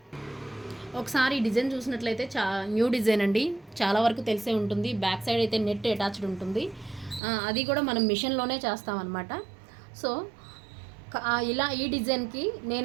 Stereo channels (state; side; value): drops out; left; at 7.2 s